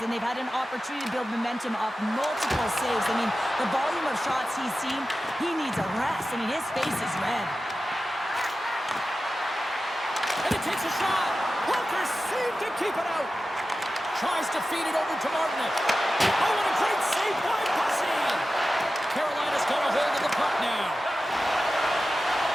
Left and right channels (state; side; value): normal; both; correlation 0.94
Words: and they've had an opportunity to build momentum off multiple saves. I mean, the volume of shots he's seen, he needs a rest. I mean, his face is red. And he takes a shot. Walker saved to keep it out. Tries to feed it over to Martinek. Oh, what a great save by Bussy. Carolina's got a hold of the puck now.